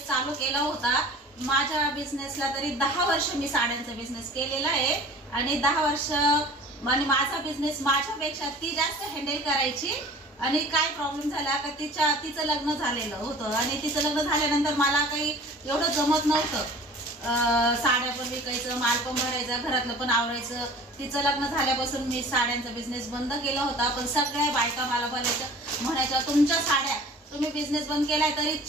चालू केला होता। माझ्या बिझनेसला तरी 10 वर्ष मी साड्यांचा बिझनेस केलेला आहे आणि 10 वर्ष म्हणजे माझा बिझनेस माझ्यापेक्षा ती जास्त हँडल करायची। आणि काय प्रॉब्लेम झाला का तिचं लग्न झालेलं होतं आणि तिचं लग्न झाल्यानंतर मला काही एवढं जमत नव्हतं। साड्या पण विकायचं, माल पण भरायचा, घरातलं पण आवरायचं। तिचं लग्न झाल्यापासून मी साड्यांचा बिझनेस बंद केला होता। पण सगळ्या बायका मला म्हणायच्या तुमच्या साड्या तुम्ही बिझनेस बंद केलाय तरी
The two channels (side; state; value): both; normal; correlation 0.44